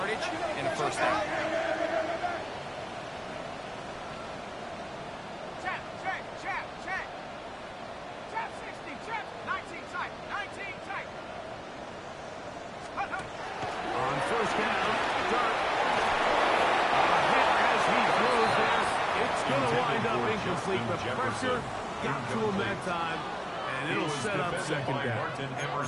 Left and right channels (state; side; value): identical; both; correlation 1.00